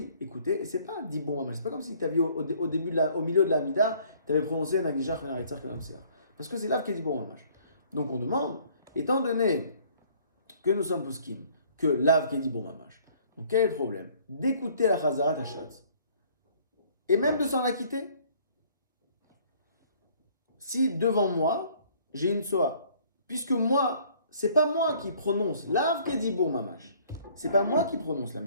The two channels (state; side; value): inverted; both; correlation -0.58